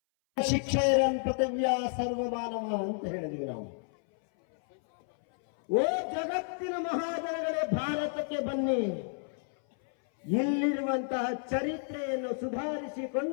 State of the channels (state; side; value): silent; right; 57 dB below the other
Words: ಶಿಕ್ಷೆಯರನ್ ಪೃಥಿವ್ಯ ಸರ್ವಮಾನವ ಅಂತ ಹೇಳಿದ್ವಿ ನಾವು. ಓ ಜಗತ್ತಿನ ಮಹಾಜನಗಳೇ, ಭಾರತಕ್ಕೆ ಬನ್ನಿ. ಇಲ್ಲಿರುವಂತಹ ಚರಿತ್ರೆಯನ್ನು